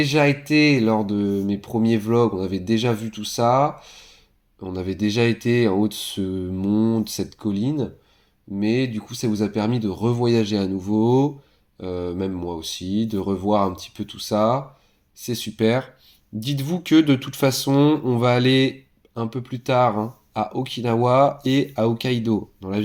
été lors de mes premiers vlogs, on avait déjà vu tout ça, on avait déjà été en haut de ce mont, de cette colline, mais du coup ça vous a permis de revoyager à nouveau, même moi aussi, de revoir un petit peu tout ça, c'est super. Dites-vous que de toute façon, on va aller un peu plus tard à Okinawa et à Hokkaido, dans la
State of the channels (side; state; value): both; identical; correlation 1.00